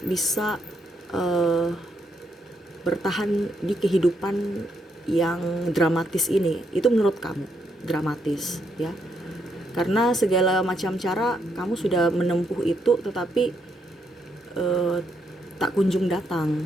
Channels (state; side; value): normal; both; correlation 0.76